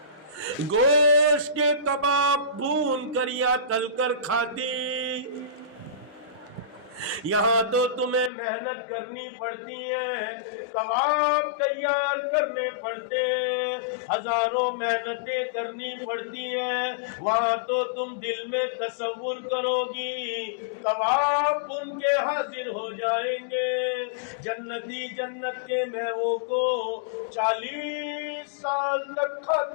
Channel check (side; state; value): right; drops out; at 8.3 s